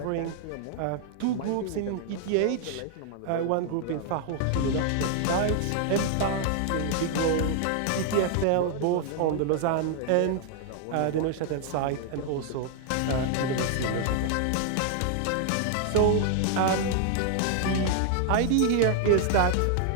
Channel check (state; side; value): different; both; correlation 0.00